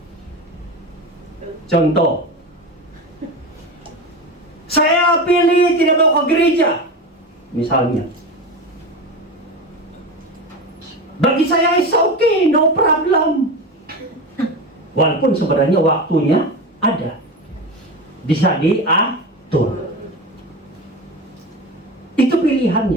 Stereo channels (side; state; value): both; normal; correlation 0.25